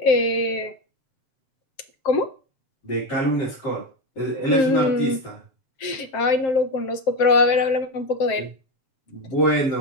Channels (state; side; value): late; right; 7.6 ms